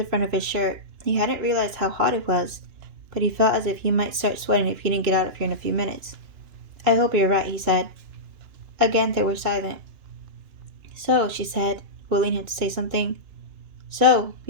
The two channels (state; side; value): late; left; 2.9 ms